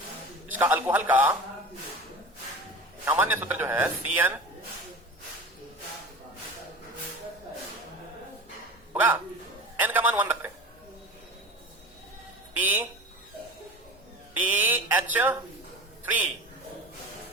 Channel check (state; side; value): normal; both; correlation 0.33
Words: इसका अल्कोहल का सामान्य सूत्र जो है CN होगा, N का मान 1 रखते हैं,